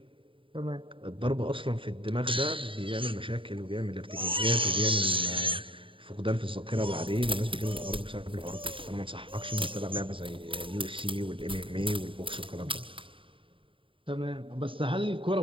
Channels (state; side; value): late; left; 0.25 ms